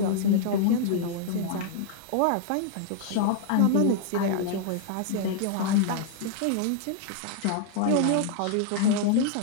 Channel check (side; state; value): both; different; correlation -0.01